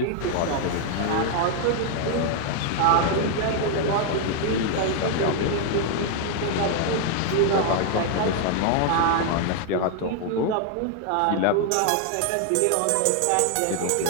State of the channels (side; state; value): both; different; correlation 0.00